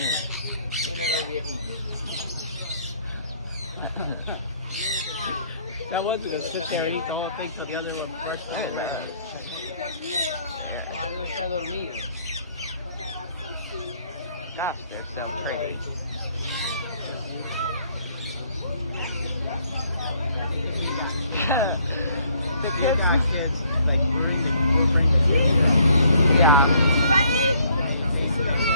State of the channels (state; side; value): inverted; both; correlation -0.65